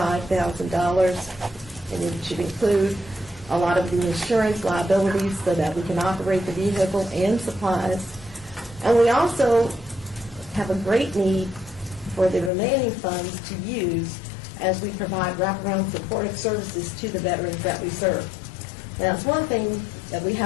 and it should include a lot of the insurance liabilities so that we can operate the vehicle and supplies. And we also have a great need for the remaining funds to use as we provide wraparound supportive services to the veterans that we serve. Now, it's one thing that we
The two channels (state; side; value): drops out; right; at 12.5 s